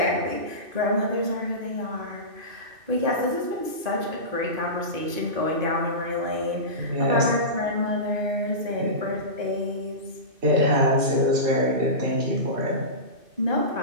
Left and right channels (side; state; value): left; late; 2.5 ms